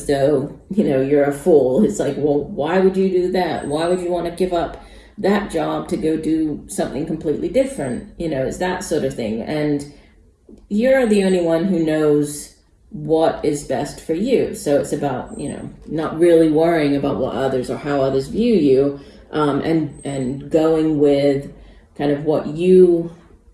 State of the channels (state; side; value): identical; both; correlation 1.00